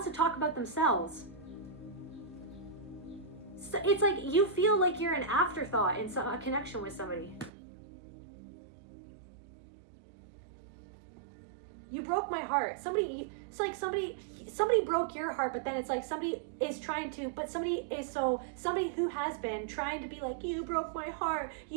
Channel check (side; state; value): left; drops out; at 7.5 s